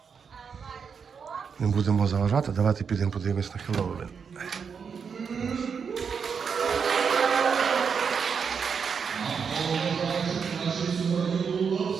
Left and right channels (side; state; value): left; quieter; 6.3 dB